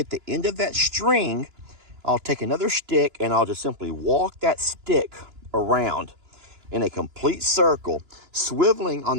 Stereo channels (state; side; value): late; left; 2.9 ms